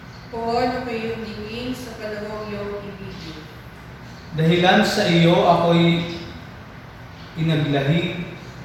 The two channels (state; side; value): identical; both; correlation 1.00